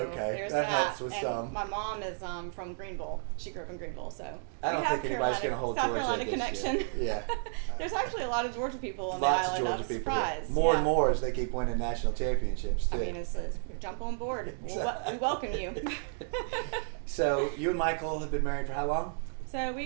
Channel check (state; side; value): silent; left; 56 dB below the other